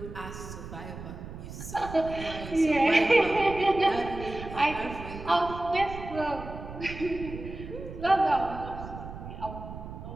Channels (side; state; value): right; noise; rumble, 11 dB below the sound